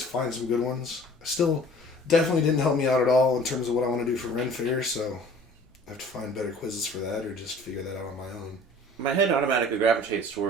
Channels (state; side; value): normal; both; correlation 0.49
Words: some good ones. Still, definitely didn't help me out at all in terms of what I want to do for Ren Fair, so I have to find better quizzes for that or just figure that out on my own. My head automatically gravitates